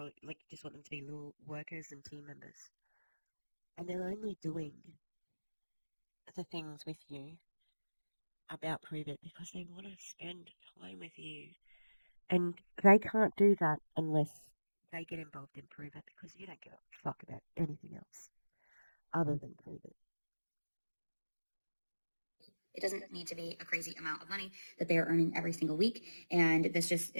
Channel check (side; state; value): both; inverted; correlation -1.00